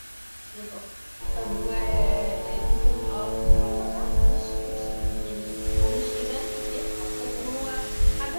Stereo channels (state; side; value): inverted; both; correlation -1.00